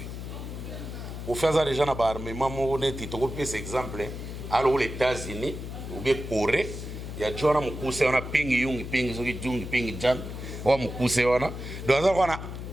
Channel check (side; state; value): left; noise; hum, 8 dB below the sound